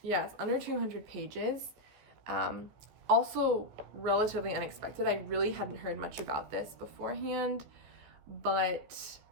Yeah, it's under 200 pages. Also relatively unexpected. I really hadn't heard much about this beforehand, but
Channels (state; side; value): late; left; 15 ms